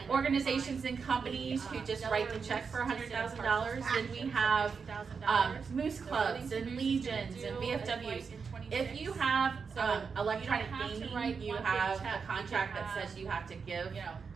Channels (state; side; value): quieter; left; 5.6 dB